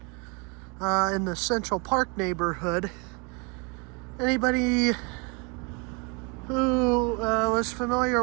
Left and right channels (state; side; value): quieter; left; 31.8 dB